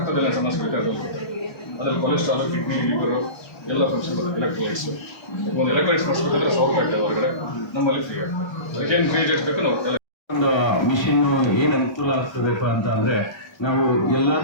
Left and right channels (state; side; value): late; right; 1.3 ms